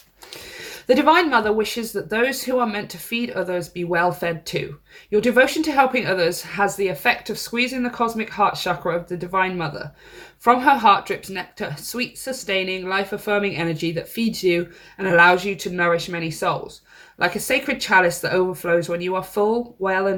The Divine Mother wishes that those who are meant to feed others be well fed too. Your devotion to helping others has the effect of squeezing the cosmic heart chakra of the Divine Mother. From her heart drips nectar, sweet, sustaining, life-affirming energy that feeds you and allows you to nourish many souls. Like a sacred chalice that overflows when you are full, well,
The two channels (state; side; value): identical; both; correlation 1.00